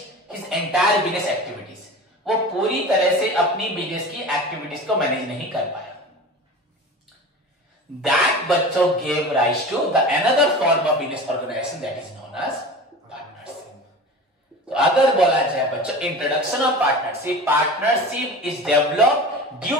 his entire business activities, वो पूरी तरह से अपनी बिजनेस की एक्टिविटीज को मैनेज नहीं कर पाया। That बच्चों gave rise to the another form of business organization that is known as partnership. तो अगर बोला जाए बच्चों introduction of partnership, partnership is developed due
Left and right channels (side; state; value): both; normal; correlation 0.34